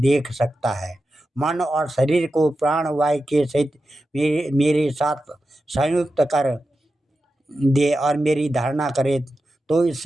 सकता है। मन और शरीर को प्राणवायु के सहित मेरे साथ संयुक्त कर दे और मेरी धारणा करे, तो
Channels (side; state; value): both; normal; correlation 0.91